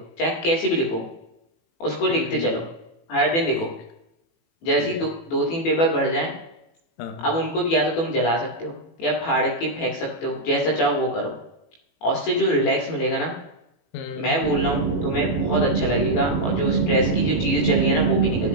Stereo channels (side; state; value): right; late; 18 ms